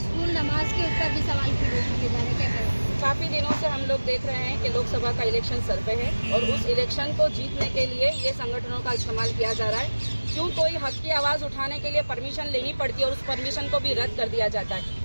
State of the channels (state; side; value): inverted; both; correlation -1.00